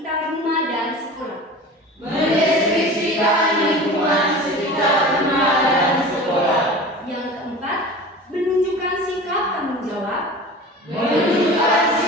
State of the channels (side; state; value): both; normal; correlation 0.36